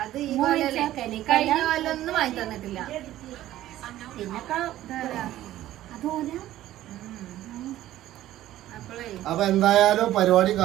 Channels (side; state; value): left; quieter; 14.0 dB